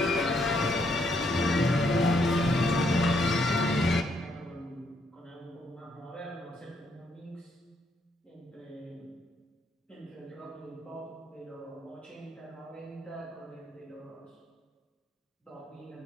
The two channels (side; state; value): both; normal; correlation 0.73